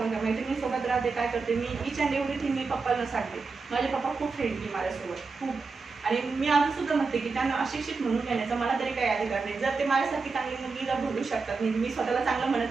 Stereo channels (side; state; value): left; quieter; 4.4 dB